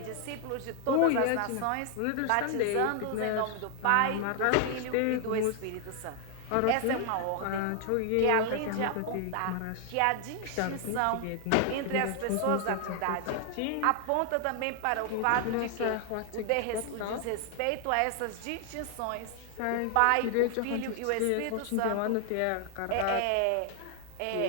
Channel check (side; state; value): both; different; correlation 0.00